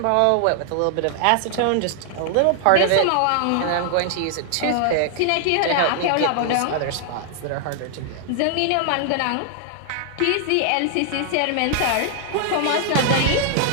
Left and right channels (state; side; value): different; both; correlation 0.00